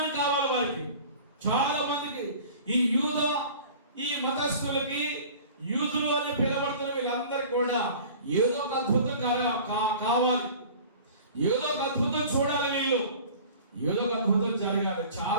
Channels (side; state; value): both; inverted; correlation -0.43